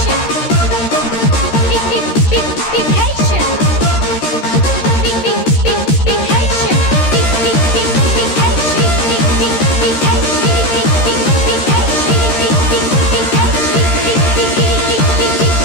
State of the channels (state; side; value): late; right; 13 ms